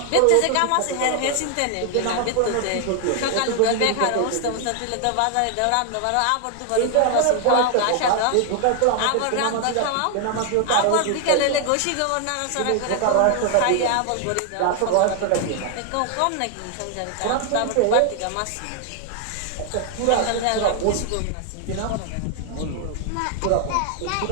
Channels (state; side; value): different; both; correlation 0.00